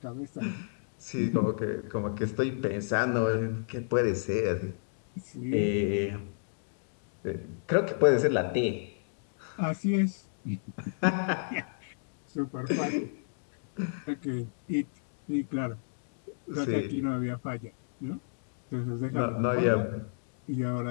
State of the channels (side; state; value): right; silent; digital silence